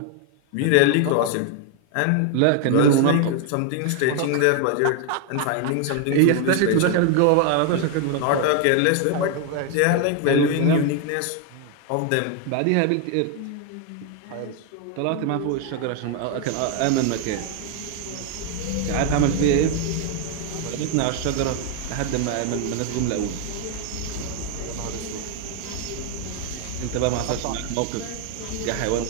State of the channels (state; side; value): different; both; correlation 0.00